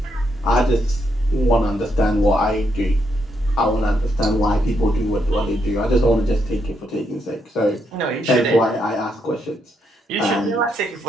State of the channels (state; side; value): normal; both; correlation 0.78